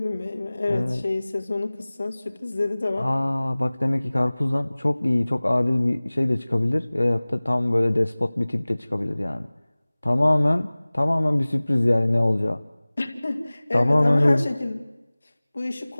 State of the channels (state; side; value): inverted; both; correlation -1.00